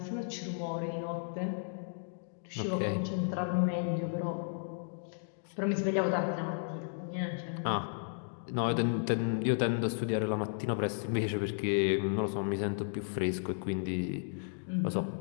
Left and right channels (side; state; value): right; silent; digital silence